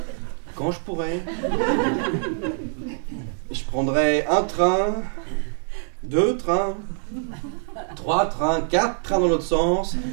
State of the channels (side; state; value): left; silent; digital silence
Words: Quand je pourrai. Je prendrai un train, 2 trains, 3 trains, 4 trains dans l'autre sens